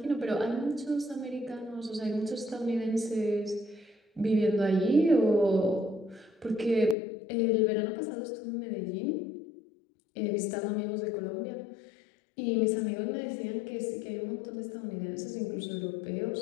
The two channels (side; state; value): right; drops out; at 7.0 s